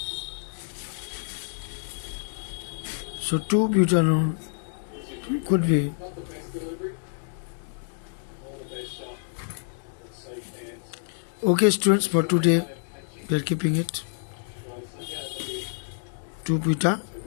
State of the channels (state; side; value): silent; right; digital silence